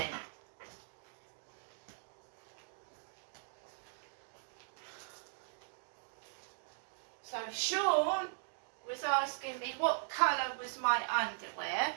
So Sean was asking me what colour was my underwear.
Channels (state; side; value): silent; left; digital silence